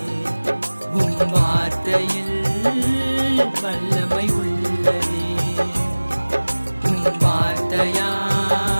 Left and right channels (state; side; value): inverted; both; correlation -1.00